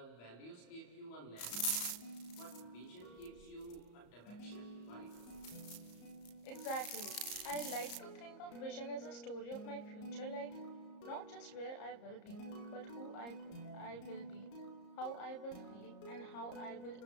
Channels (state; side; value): late; right; 34 ms